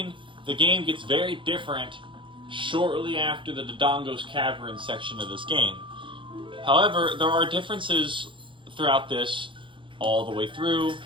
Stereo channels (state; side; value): late; left; 0.24 ms